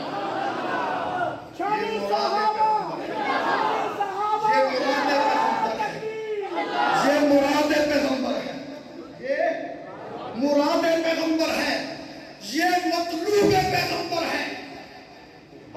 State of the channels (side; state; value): both; identical; correlation 1.00